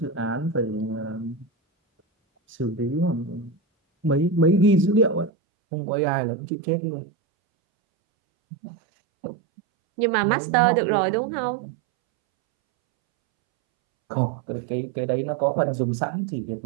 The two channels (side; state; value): left; drops out; at 5.3 s